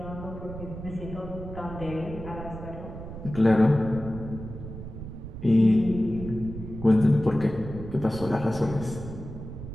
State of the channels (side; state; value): right; noise; rumble, 10 dB below the sound